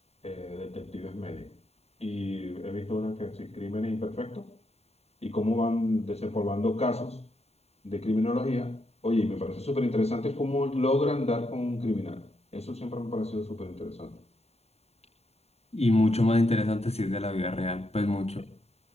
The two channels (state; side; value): late; right; 0.30 ms